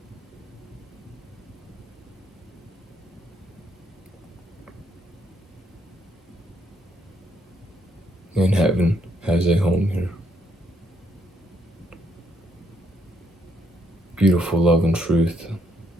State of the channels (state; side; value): normal; both; correlation 0.73